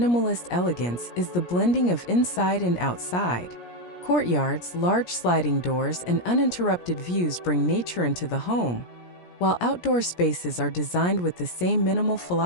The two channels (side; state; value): right; late; 17 ms